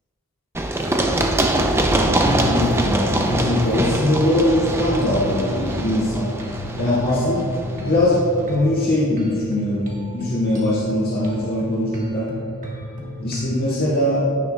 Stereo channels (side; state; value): both; normal; correlation 0.49